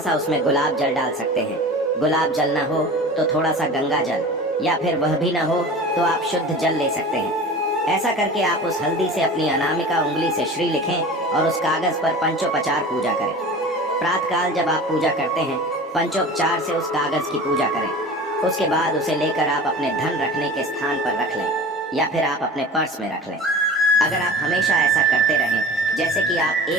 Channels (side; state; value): both; normal; correlation 0.37